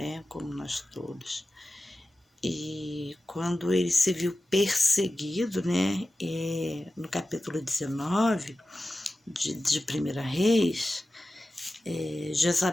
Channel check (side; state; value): both; normal; correlation 0.94